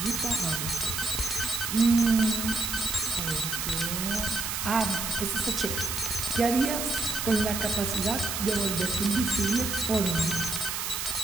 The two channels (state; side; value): noise; right; hiss, 3 dB below the sound